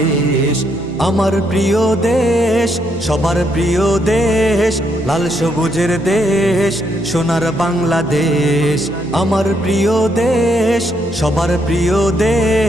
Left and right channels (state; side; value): normal; both; correlation 0.76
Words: আমার প্রিয় দেশ, সবার প্রিয় দেশ, লাল সবুজের দেশ, সোনার বাংলাদেশ। আমার প্রিয় দেশ, সবার প্রিয়